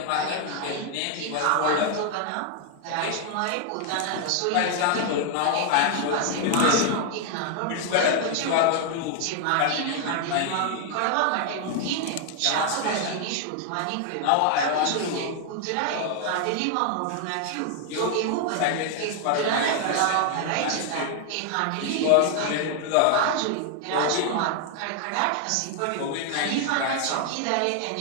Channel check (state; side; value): different; both; correlation 0.00